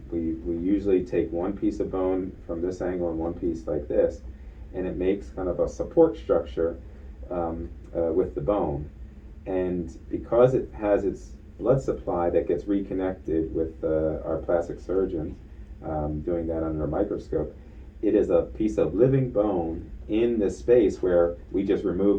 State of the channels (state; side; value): identical; both; correlation 1.00